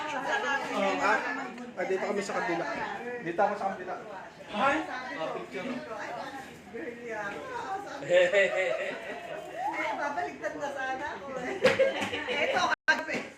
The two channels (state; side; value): identical; both; correlation 1.00